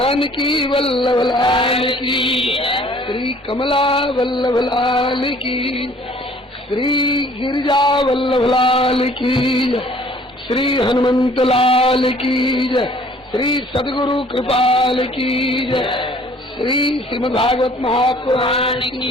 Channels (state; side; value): normal; both; correlation 0.55